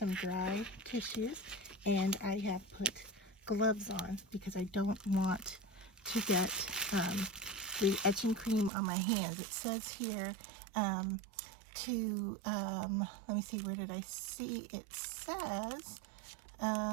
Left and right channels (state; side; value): drops out; left; at 8.7 s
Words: dry tissues, and I have put gloves on because I don't want to get the etching cream on my hands. It says here to, let me see, where did I see it says,